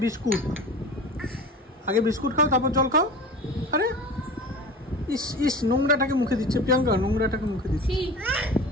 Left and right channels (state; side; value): normal; both; correlation 0.36